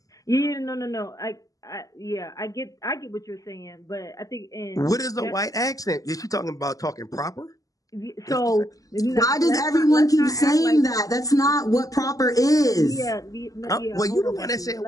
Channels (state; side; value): late; right; 0.17 ms